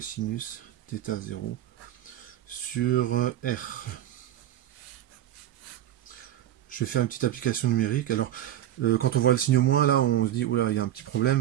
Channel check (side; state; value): left; quieter; 12.2 dB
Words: θ 0 sur r. Je vais faire une petite application numérique. Alors, quand on voit le signe moins, là, on se dit, oula, il y a un petit